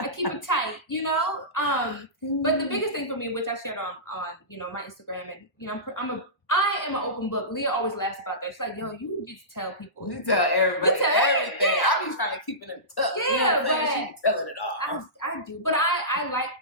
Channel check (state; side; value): late; right; 1.2 ms